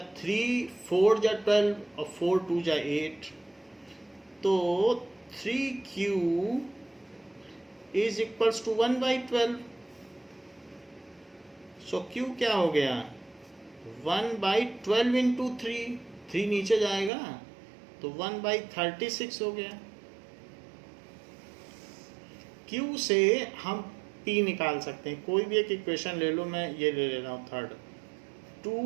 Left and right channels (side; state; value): left; drops out; at 17.1 s